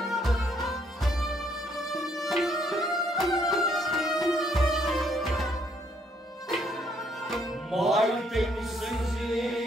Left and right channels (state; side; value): normal; both; correlation 0.69